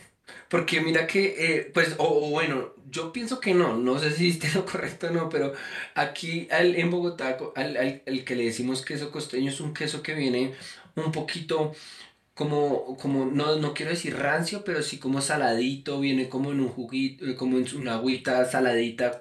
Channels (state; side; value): identical; both; correlation 1.00